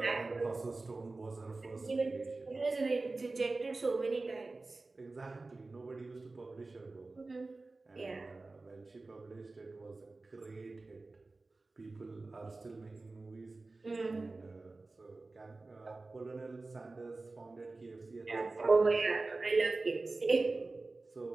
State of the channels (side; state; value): left; quieter; 3.4 dB